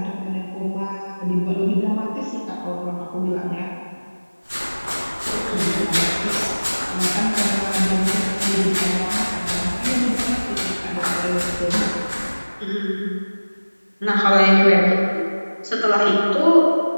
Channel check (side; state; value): both; inverted; correlation -1.00